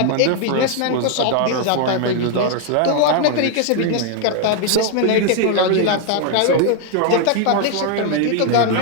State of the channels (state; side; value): different; both; correlation 0.00